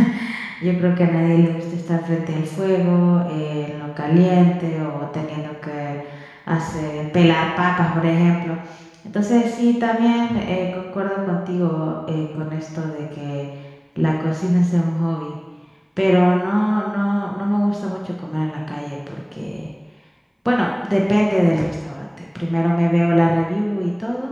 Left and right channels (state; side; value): identical; both; correlation 1.00